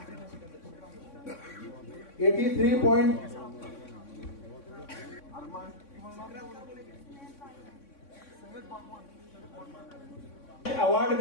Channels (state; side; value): late; right; 3.6 ms